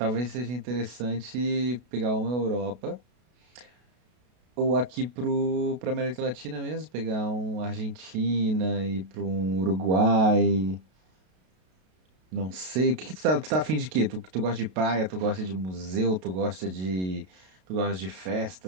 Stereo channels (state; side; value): late; left; 32 ms